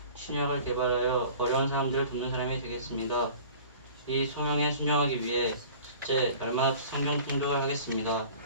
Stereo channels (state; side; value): inverted; both; correlation -0.45